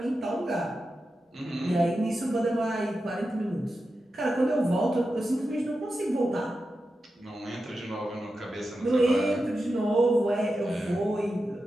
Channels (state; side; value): normal; both; correlation 0.90